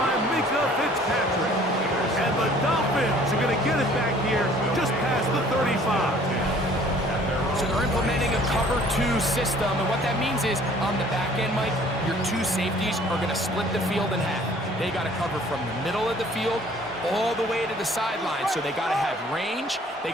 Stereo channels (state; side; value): normal; both; correlation 0.55